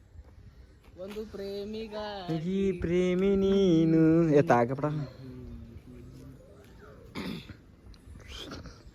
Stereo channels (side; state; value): both; identical; correlation 1.00